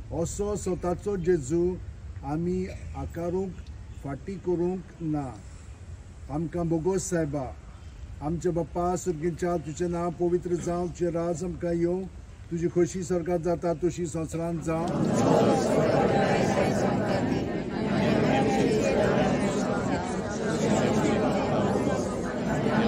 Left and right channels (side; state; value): both; identical; correlation 1.00